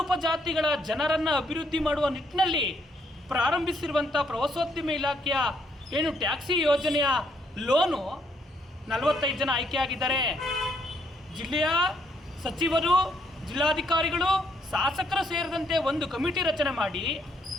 ಉಪಜಾತಿಗಳ ಜನರನ್ನು ಅಭಿವೃದ್ಧಿ ಮಾಡುವ ನಿಟ್ಟಿನಲ್ಲಿ ಪ್ರಾರಂಭಿಸಿರುವಂಥ ಪ್ರವಾಸೋದ್ಯಮ ಇಲಾಖೆಯ ಏನು ಟ್ಯಾಕ್ಸಿ ಯೋಜನೆಯ ಲೋನು 45 ಜನ ಆಯ್ಕೆಯಾಗಿದ್ದಾರೆ. ಜಿಲ್ಲೆಯ ಸಚಿವರು, ಜಿಲ್ಲಾಧಿಕಾರಿಗಳು, ಶಾಸಕರು ಸೇರಿದಂತೆ ಒಂದು ಕಮಿಟಿ ರಚನೆ ಮಾಡಿ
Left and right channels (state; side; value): normal; both; correlation 0.71